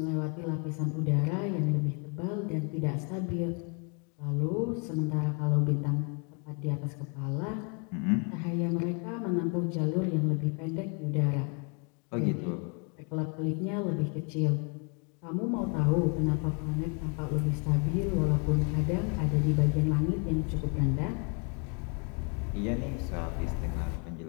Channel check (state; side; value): quieter; right; 36.6 dB